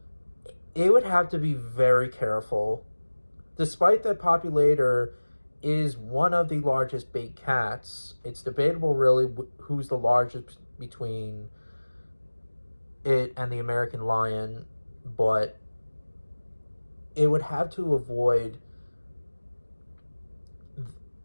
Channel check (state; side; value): inverted; both; correlation -1.00